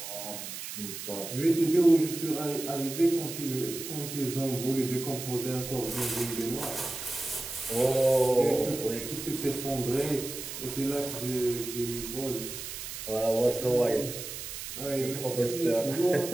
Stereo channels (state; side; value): noise; right; hiss, 8 dB below the sound